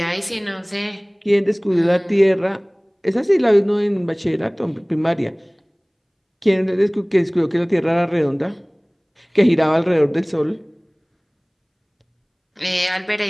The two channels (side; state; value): both; identical; correlation 1.00